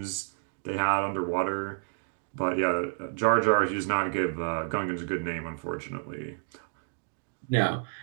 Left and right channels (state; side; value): silent; left; digital silence